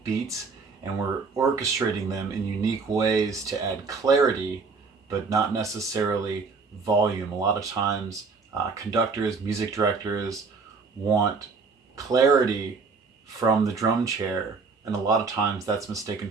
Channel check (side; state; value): left; quieter; 4.7 dB